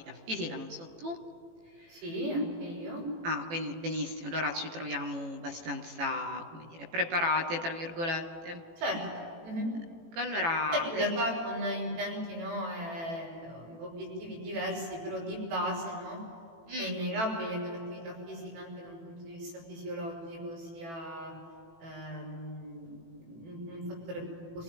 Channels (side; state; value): left; late; 18 ms